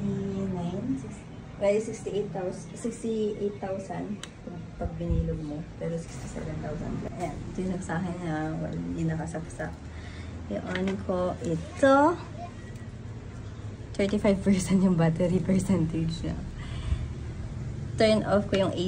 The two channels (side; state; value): both; identical; correlation 1.00